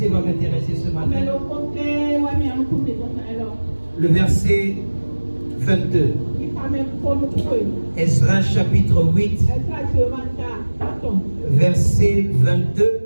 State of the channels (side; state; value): both; inverted; correlation -1.00